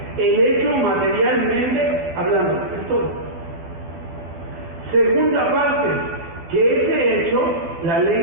El hecho materialmente hablando, es todo. Segunda parte, que ese hecho, la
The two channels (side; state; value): left; late; 12 ms